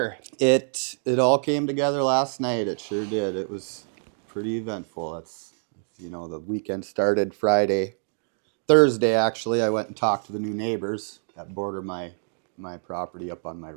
It all came together last night. It sure did. It was pretty eventful. It's, you know, the weekend started Thursday actually. I went and talked to the new neighbors that border my property up on my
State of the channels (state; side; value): silent; left; digital silence